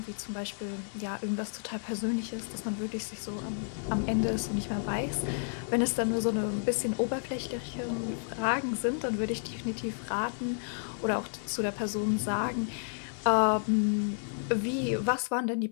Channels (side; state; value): right; silent; 57 dB below the other